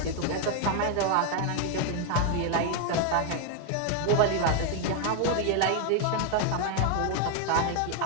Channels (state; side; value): different; both; correlation 0.00